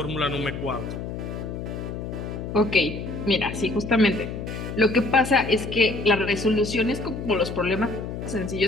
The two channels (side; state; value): left; noise; hum, 6 dB below the sound